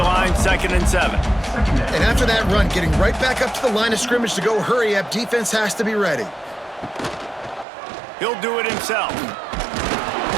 line, 2nd and 7. And after that run, getting right back up to the line of scrimmage to go hurry up, defense has to be ready. He'll do it himself.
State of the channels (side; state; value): left; drops out; at 7.7 s